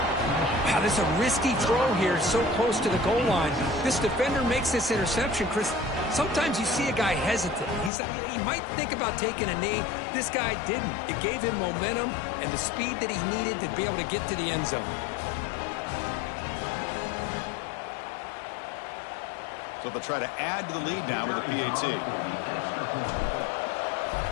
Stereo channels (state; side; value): drops out; right; at 7.9 s